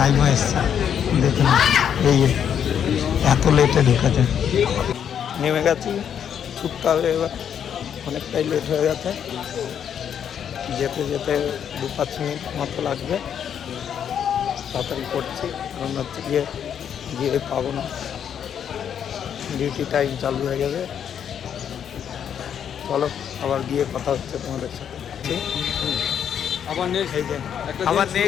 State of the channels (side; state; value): right; quieter; 8.6 dB